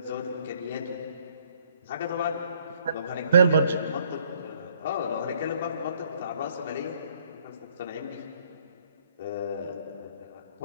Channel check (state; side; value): inverted; both; correlation -0.66